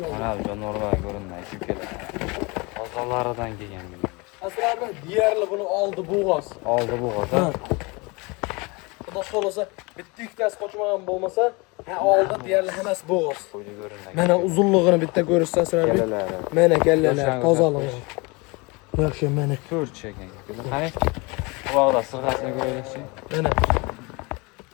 Mana bu jonivorlar ko'rinmay aka-ukalar. Qozonlaridan kelgan bugun. Asrarbek deyarli buni oldi bo'g'oz. Oldi bu g'o'za. Xudo xolasa bitta ikkitasi qochmagan bo'lmasa, oldi deyarli hammasi bo'g'oz. Qo'ydi ko'rinmay. Mana uzunligini bitta ko'rishsa Asrarbek. Kalalari. Mana kallalar, tozaligi. Yaxshi mana. Ko'rchi ekan aka-ukalar. Qani? Quloqda sirg'asini ko'raylikchi. Mana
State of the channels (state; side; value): quieter; right; 27.1 dB